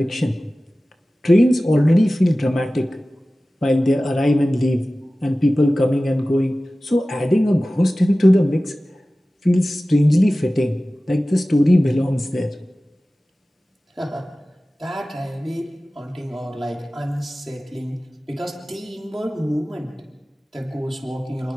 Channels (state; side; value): normal; both; correlation 0.96